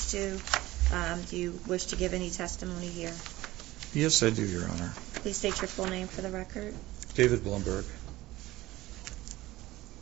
to. Do you wish to give any testimony here? Yes, I do, Your Honor. Please state your full name for the record. David Blumberg.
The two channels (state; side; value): quieter; left; 17.7 dB